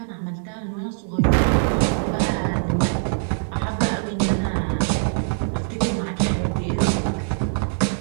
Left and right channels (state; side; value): silent; left; digital silence